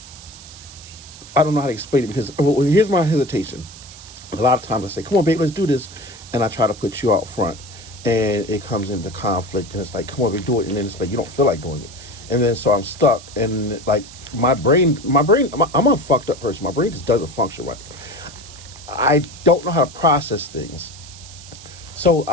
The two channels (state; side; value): noise; right; hiss, 17 dB below the sound